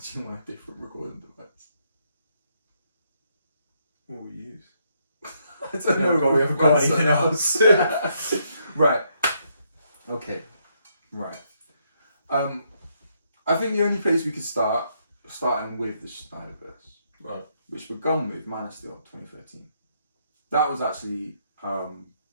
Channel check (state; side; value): inverted; both; correlation -0.74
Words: you want a different recording device? What will we use? I don't know. We haven't got anything else. Right. Okay. Right. I think the only place we could starting with the Snyderverse, right, which begun with Man of Steel 2013. That was actually we can